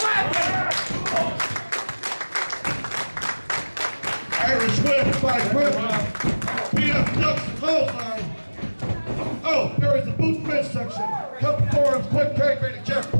Irish whip by Kremlin. PF ducks the clothesline. Oh, there is the boot midsection. Couple forums, quick tag rating, Jeff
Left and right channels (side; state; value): both; inverted; correlation -1.00